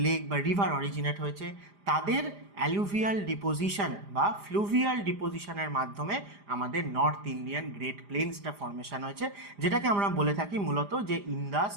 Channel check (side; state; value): left; late; 4.9 ms